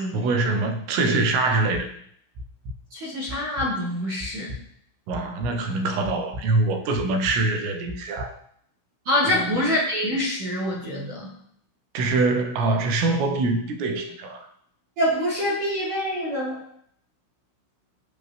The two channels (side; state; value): left; late; 16 ms